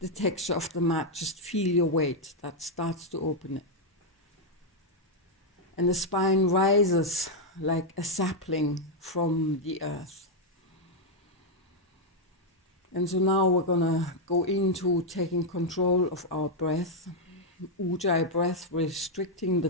texture of the mat. Just feel your weight. That starts to open it. And the spine rises like a sapling from the earth. And so now we're gonna go into taking control of our breath. Ujjayi breath, restricting the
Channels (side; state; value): both; normal; correlation -0.01